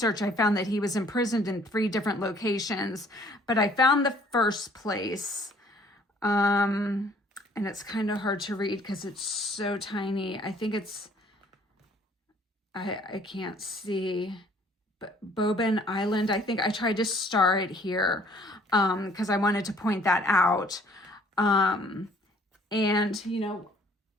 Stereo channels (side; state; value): both; normal; correlation 0.59